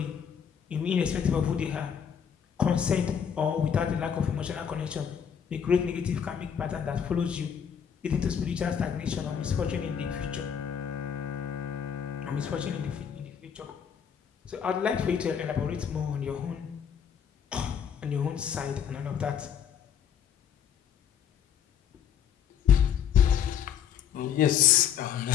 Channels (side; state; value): right; quieter; 8.1 dB